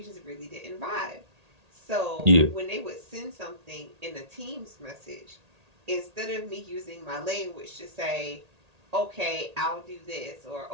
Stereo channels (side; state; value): left; late; 1.8 ms